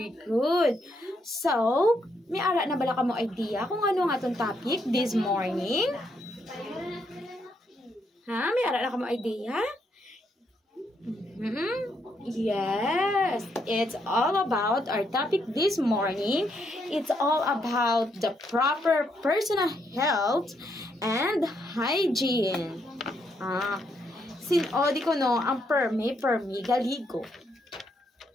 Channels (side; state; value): both; normal; correlation 0.76